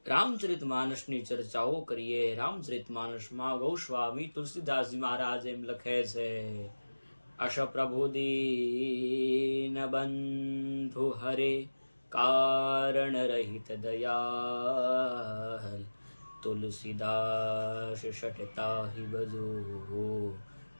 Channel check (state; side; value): inverted; both; correlation -1.00